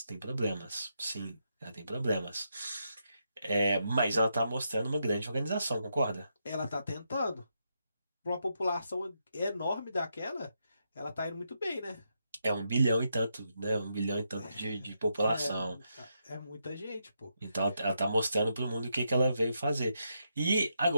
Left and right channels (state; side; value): inverted; both; correlation -0.82